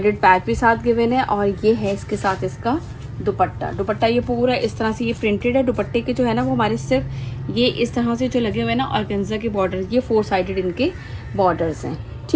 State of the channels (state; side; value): identical; both; correlation 1.00